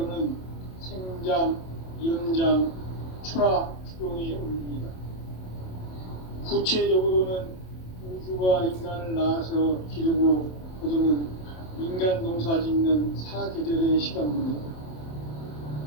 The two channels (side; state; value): right; late; 27 ms